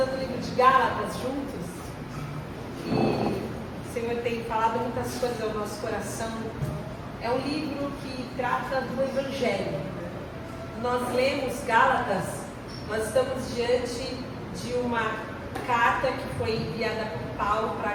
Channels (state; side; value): identical; both; correlation 1.00